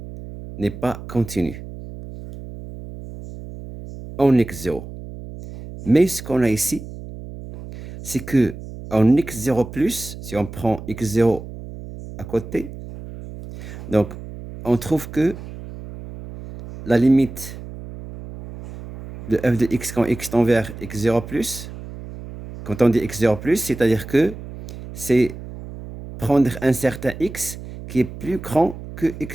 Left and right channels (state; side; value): noise; right; hum, 12 dB below the sound